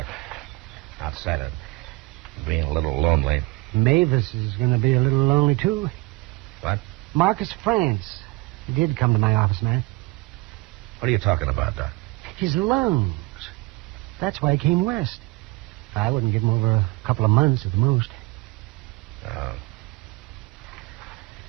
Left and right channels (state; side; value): quieter; left; 22.0 dB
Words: Outside of being a little lonely. Mavis is going to be a little lonely, too. What? Marcus France. He did come to my office, man. What are you talking about, Doc? His lungs. That's why he came west. I wouldn't give him over a couple of months at the most.